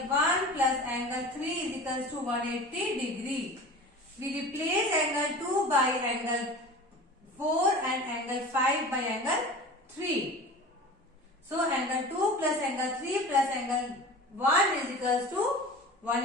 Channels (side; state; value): both; normal; correlation 0.37